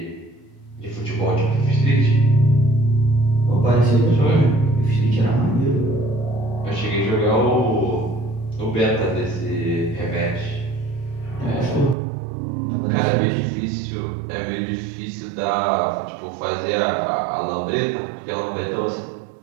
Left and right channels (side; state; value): left; drops out; at 12.0 s